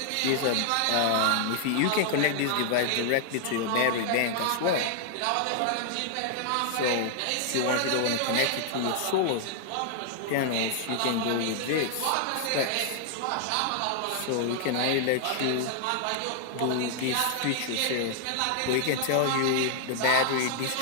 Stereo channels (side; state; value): both; different; correlation 0.00